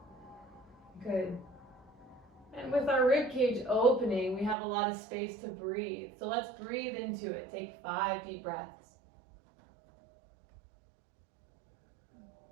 Good. And with our rib cage opening, we have a lot of space to breathe. So let's breathe into it. Take 5 deep breaths.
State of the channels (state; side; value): drops out; left; at 4.5 s